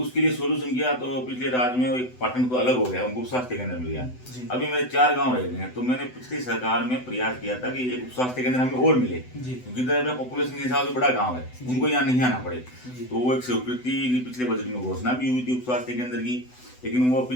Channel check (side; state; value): right; late; 8.0 ms